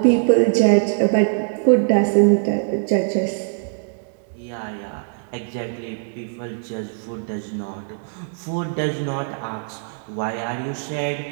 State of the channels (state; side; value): silent; left; digital silence